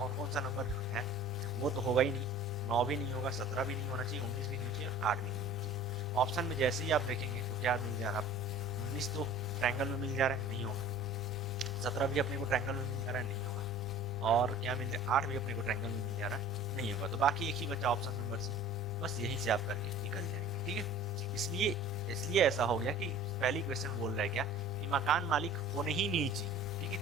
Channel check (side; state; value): both; normal; correlation 0.45